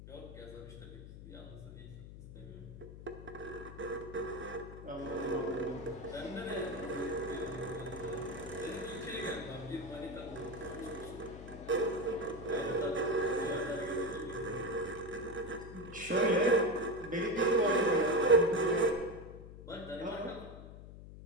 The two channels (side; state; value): left; noise; hum, 14 dB below the sound